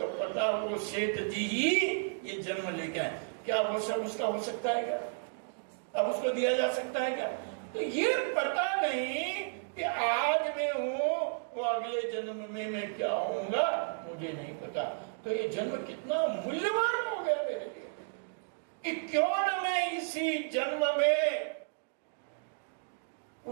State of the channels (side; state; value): left; silent; digital silence